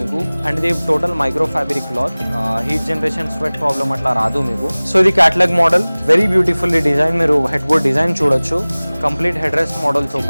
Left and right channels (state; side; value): inverted; both; correlation -1.00